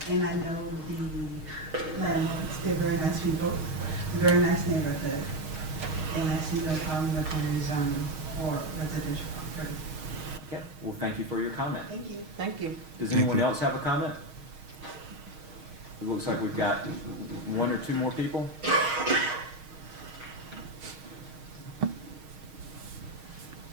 and I know the landlords. They're very nice people, very nice neighborhood, and I see no problem with the rezoning or residential property. Okay. Well, thank you for your comment. Thank you. Thank you. Does anyone else have a comment? It looks like we've got 1 or 2 more people.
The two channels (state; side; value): late; left; 6.4 ms